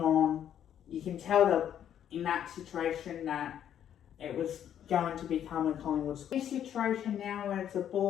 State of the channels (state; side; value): quieter; right; 9.9 dB